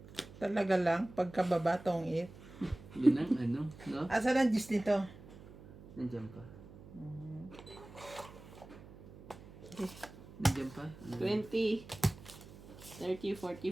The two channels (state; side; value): noise; right; hum, 18 dB below the sound